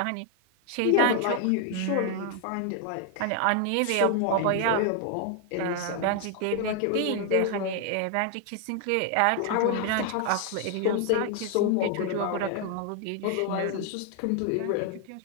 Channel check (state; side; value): different; both; correlation 0.00